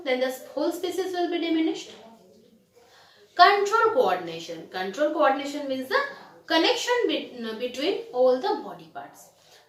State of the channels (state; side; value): identical; both; correlation 1.00